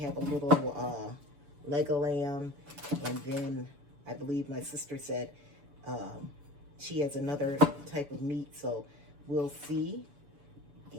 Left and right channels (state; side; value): late; left; 6.9 ms